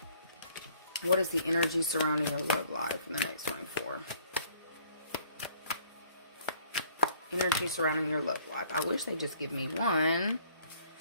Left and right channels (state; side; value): inverted; both; correlation -0.59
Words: What is the energy surrounding your love life in the next 24? Energy surrounding your love life. I wish they'd just give me one.